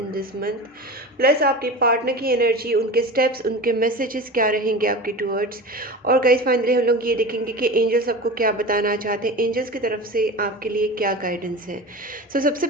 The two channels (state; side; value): normal; both; correlation 0.31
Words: दिस मंथ, प्लस आपके पार्टनर की एनर्जी, उनके स्टेप्स, उनके मैसेजेस क्या रहेंगे आपके टूवर्ड्स। और गाइज फाइनली हम लोग ये देखेंगे कि एंजल्स आपको क्या बताना चाहते हैं, एंजल्स की तरफ से आपके लिए क्या गाइडेंस है। सो सबसे